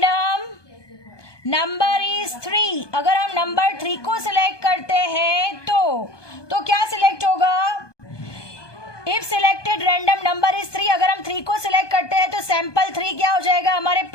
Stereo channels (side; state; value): right; late; 1.2 ms